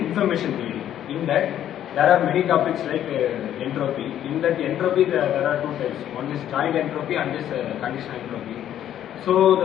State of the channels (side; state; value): right; quieter; 11.0 dB